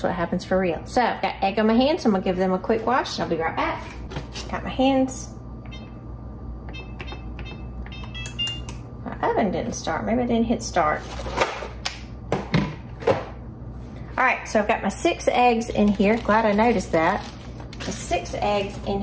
what happens for real. So I've got egg on my hands, so I'm gonna give them a quick wash. I'll be right back. Got my hands. My oven didn't start. Maybe I didn't hit start. All right, so I've got my 6 eggs in here. Glad I noticed that. The 6 eggs in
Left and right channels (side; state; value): both; identical; correlation 1.00